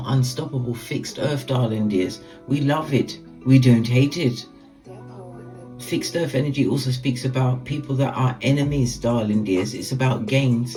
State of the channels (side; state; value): both; identical; correlation 1.00